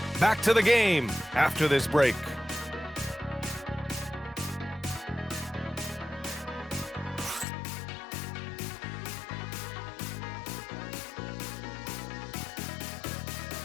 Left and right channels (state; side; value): drops out; right; at 7.5 s